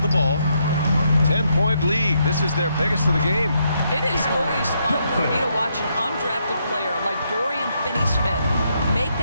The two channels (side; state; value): both; inverted; correlation -0.76